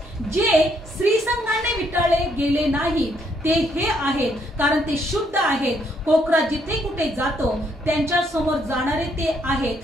जे स्त्रीसंघाने विटाळले गेले नाही ते हे आहेत, कारण ते शुद्ध आहेत. कोकरा जिथे कुठे जातो त्यांच्या समोर जाणारे ते आहेत.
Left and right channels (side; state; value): both; normal; correlation 0.71